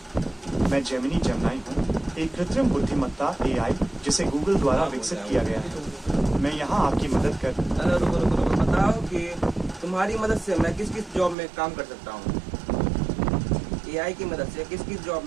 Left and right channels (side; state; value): left; drops out; at 11.4 s